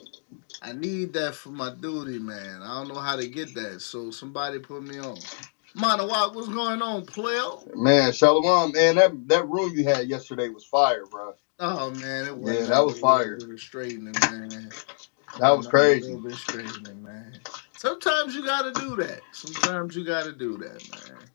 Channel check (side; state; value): right; silent; digital silence